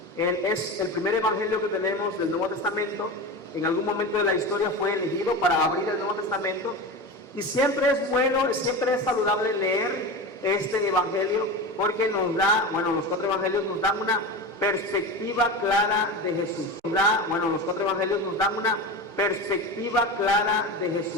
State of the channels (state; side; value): normal; both; correlation 0.25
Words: Es el primer evangelio que tenemos del Nuevo Testamento. En algún momento de la historia fue elegido para abrir el Nuevo Testamento. Y siempre es bueno, siempre es saludable leer este evangelio, porque nos da, los cuatro evangelios nos dan una perspectiva clara de Jesús. Los cuatro evangelios nos dan una perspectiva clara de